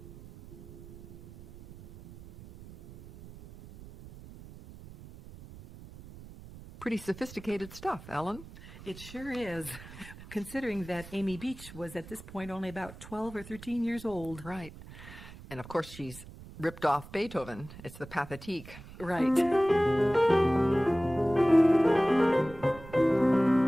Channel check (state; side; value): noise; right; rumble, 17 dB below the sound